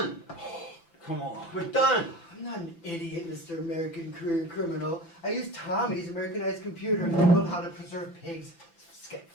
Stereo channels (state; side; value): late; right; 5.9 ms